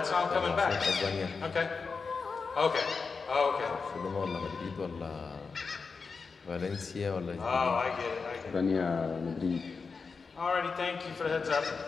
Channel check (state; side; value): quieter; right; 4.9 dB